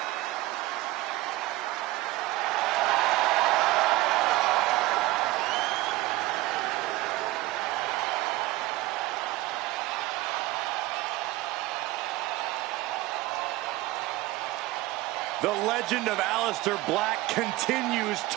The legend of Aleister Black continues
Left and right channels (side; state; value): left; quieter; 18.4 dB